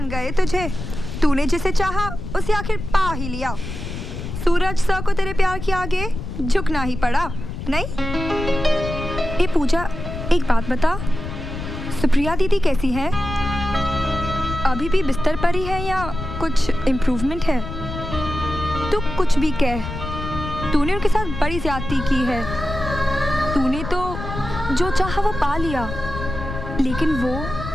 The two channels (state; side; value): noise; left; rumble, 7 dB below the sound